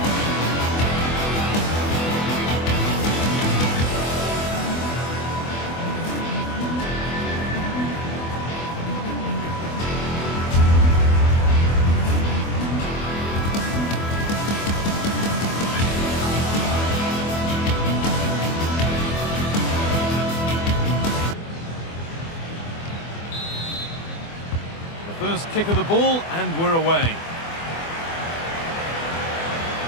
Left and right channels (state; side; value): late; right; 24 ms